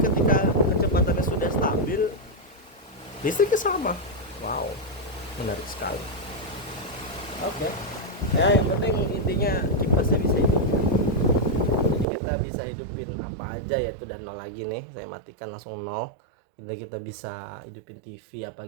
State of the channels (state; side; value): drops out; left; at 12.1 s